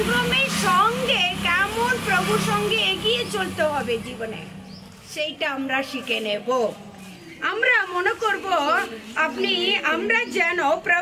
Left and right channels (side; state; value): both; identical; correlation 1.00